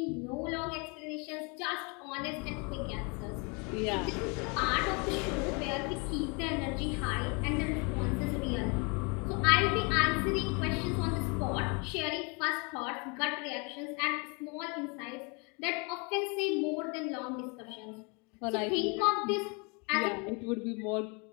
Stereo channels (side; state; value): right; quieter; 32.2 dB